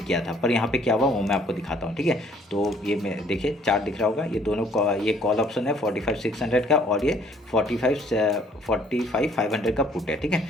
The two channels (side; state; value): both; normal; correlation 0.61